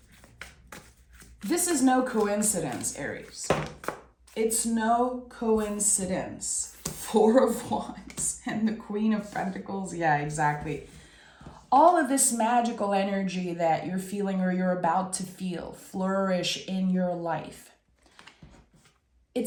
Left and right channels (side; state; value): both; identical; correlation 1.00